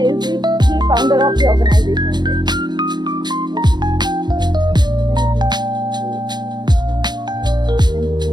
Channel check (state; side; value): late; left; 0.21 ms